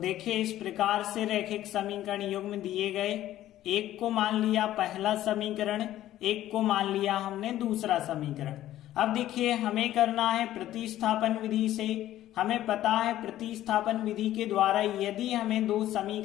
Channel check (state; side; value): quieter; right; 13.5 dB